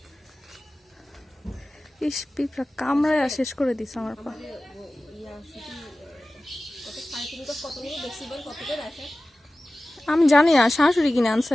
ইস পিঁপড়া কামড়ায় শেষ করে দিস আমার পা। আমি জানি না, শাশুড়ি কিনে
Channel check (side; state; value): both; normal; correlation 0.96